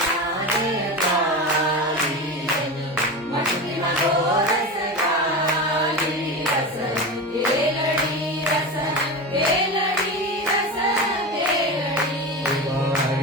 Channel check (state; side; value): normal; both; correlation 0.24